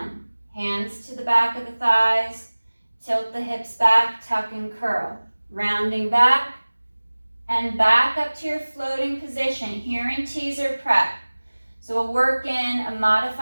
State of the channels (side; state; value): both; inverted; correlation -1.00